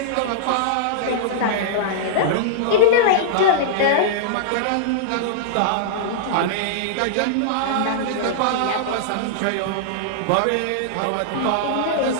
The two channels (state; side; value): different; both; correlation -0.02